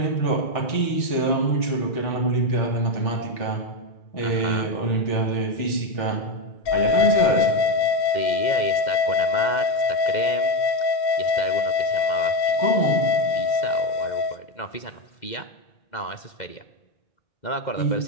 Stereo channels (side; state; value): right; late; 2.1 ms